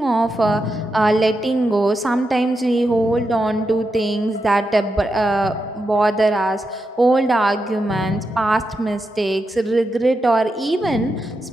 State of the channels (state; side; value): normal; both; correlation 0.86